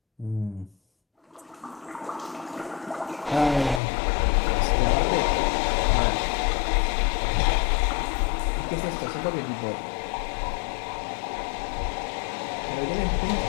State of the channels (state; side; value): drops out; right; at 3.8 s